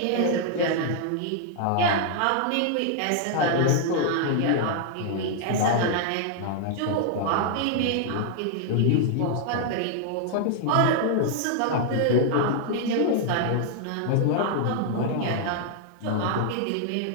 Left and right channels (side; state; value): both; different; correlation -0.01